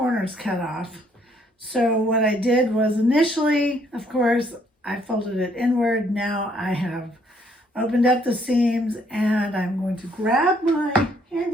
cut off. So what I did was, initially, of course, I folded it inward. Now I have opened up the seams, and I'm going to grab my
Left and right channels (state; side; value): normal; both; correlation 0.67